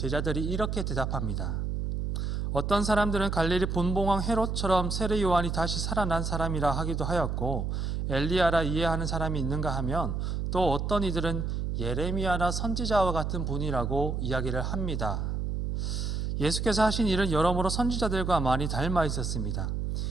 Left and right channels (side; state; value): right; noise; hum, 1 dB below the sound